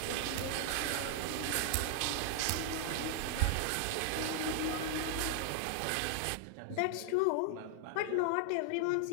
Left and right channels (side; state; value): both; different; correlation 0.00